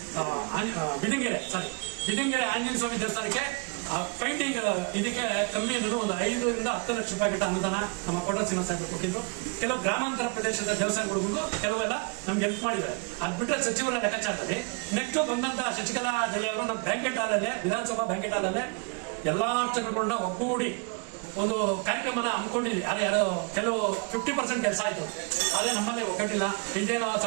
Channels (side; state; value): left; quieter; 33.8 dB